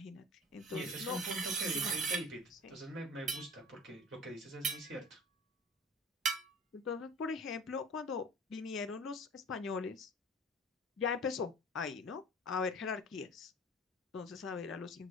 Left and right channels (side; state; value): both; normal; correlation 0.40